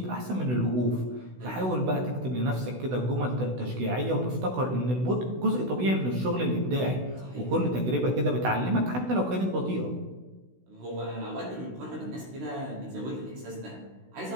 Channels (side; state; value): left; late; 16 ms